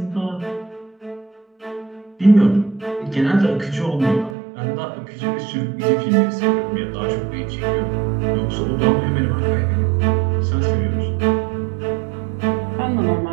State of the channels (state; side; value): drops out; left; at 4.4 s